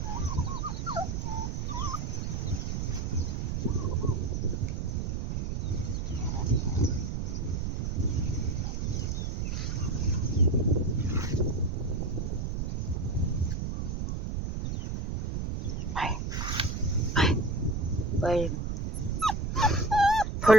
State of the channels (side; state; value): right; noise; rumble, 1 dB below the sound